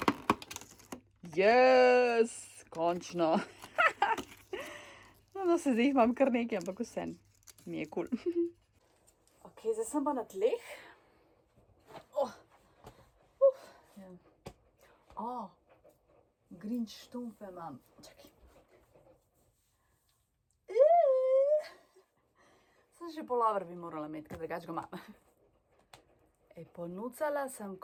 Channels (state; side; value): identical; both; correlation 1.00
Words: Yes, končno. No, se zdaj jih imam kar nekaj, ampak vse mi je kul. Ok, zdaj sem pa na tleh. Grinch štumfe imam. Čakaj. Sem še polover bi morala imeti, ker drugače ga imam. Ponucala sem